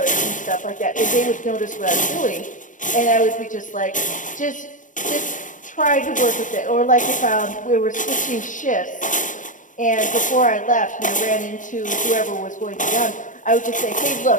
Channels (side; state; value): right; late; 0.37 ms